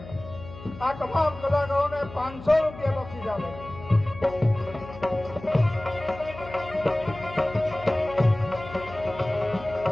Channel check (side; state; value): left; noise; hum, 15 dB below the sound